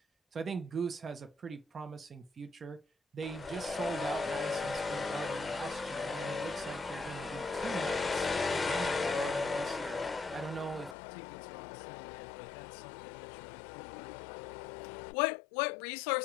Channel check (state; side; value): drops out; right; at 11.0 s